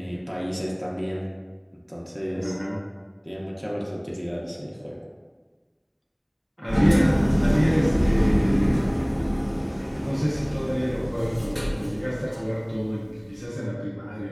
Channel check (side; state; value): both; identical; correlation 1.00